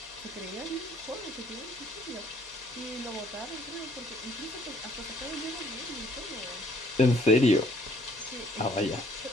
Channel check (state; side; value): normal; both; correlation 0.62